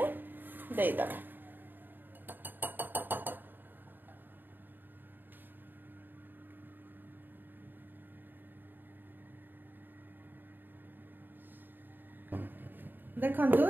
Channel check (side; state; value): left; late; 0.092 ms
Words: देई दबा देखंतु